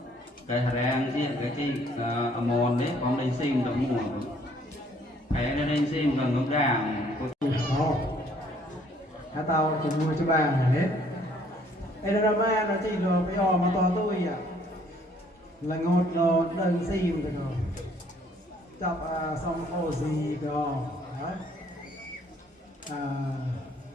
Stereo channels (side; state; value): both; normal; correlation 0.62